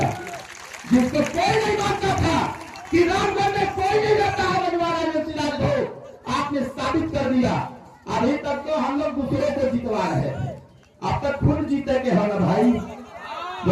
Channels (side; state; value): both; identical; correlation 1.00